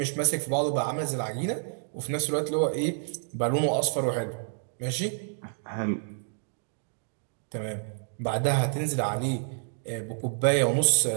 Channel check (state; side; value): silent; left; digital silence